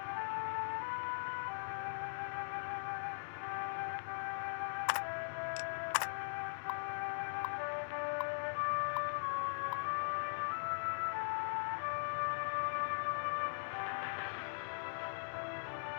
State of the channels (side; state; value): right; silent; 51 dB below the other